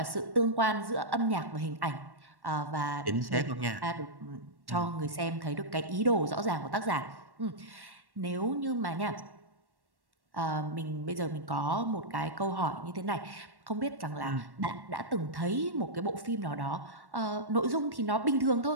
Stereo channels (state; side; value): late; left; 1.1 ms